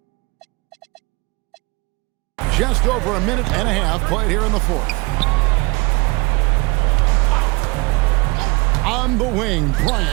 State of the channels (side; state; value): left; quieter; 26.2 dB